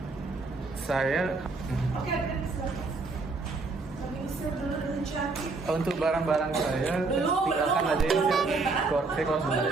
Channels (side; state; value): left; quieter; 3.9 dB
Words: Saya Oke, untuk barang-barang saya tinggalkan aja ya. Saya kalau